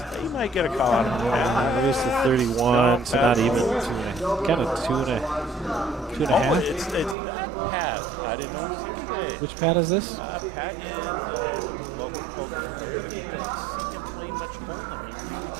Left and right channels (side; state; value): left; drops out; at 7.2 s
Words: He might get a call out of him. Reduced to 31, so not even kind of two and a half. It's that Pat. I didn't know he was here today. Which Pat is this? Pat is a local poker player, but you don't see him playing much Hold'em. He really